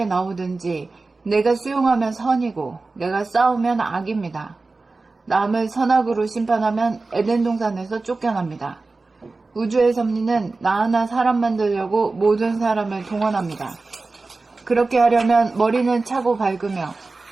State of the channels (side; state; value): left; quieter; 3.6 dB